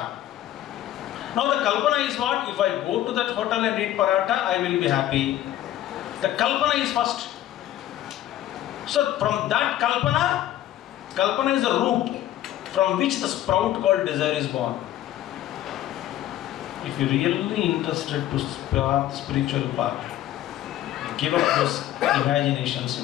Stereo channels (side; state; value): right; quieter; 13.2 dB